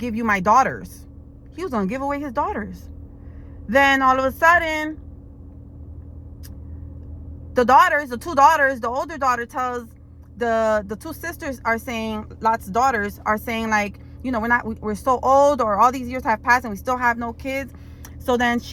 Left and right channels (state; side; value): identical; both; correlation 1.00